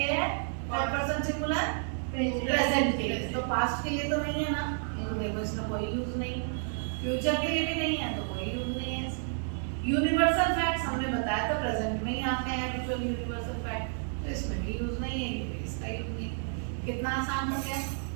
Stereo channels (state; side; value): silent; left; 57 dB below the other